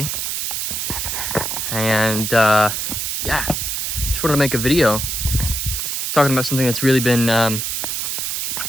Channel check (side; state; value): right; noise; hiss, 2 dB below the sound